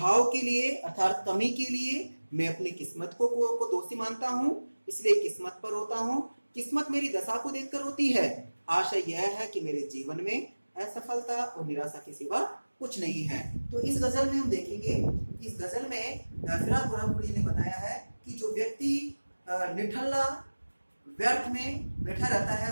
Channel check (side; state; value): both; inverted; correlation -1.00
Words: के लिए अर्थात कमी के लिए मैं अपनी किस्मत को दोषी मानता हूँ, इसलिए किस्मत पर रोता हूँ। किस्मत मेरी दशा को देखकर रोती है। आशा यह है कि मेरे जीवन में असफलता और निराशा के सिवा कुछ नहीं है। तो इस गजल में हम देखेंगे, इस गजल में फिराक गोरखपुरी ने बताया है कि जो व्यक्ति निठल्ला व्यर्थ में बैठा रहता